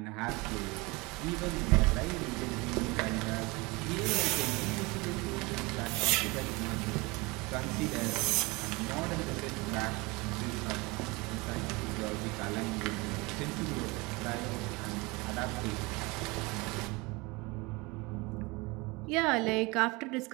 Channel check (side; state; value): left; quieter; 24.9 dB